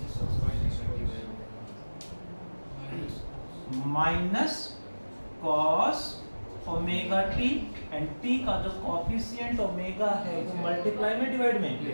minus cos omega t and t का जो कोफिशिएंट ओमेगा है वो मल्टीप्लाई में डिवाइड में,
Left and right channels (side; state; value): both; inverted; correlation -1.00